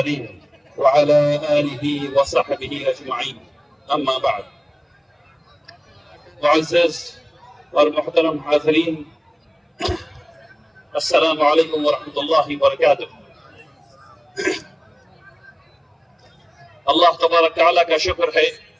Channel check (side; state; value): both; identical; correlation 1.00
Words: وعلى آلہ وصحبہ اجمعین. اما بعد. معزز اور محترم حاضرین، السلام علیکم ورحمۃ اللہ وبرکاتہ. اللہ تبارک تعالیٰ کا شکر ہے،